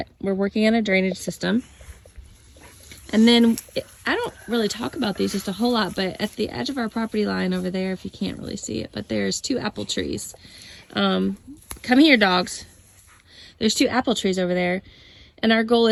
We're working on a drainage system. And then I don't really talk about these just a whole lot, but at the edge of our property line over there, if you can't really see it, but there's 2 apple trees. Come here, dogs. There's 2 apple trees over there. And our goal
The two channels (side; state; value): both; identical; correlation 1.00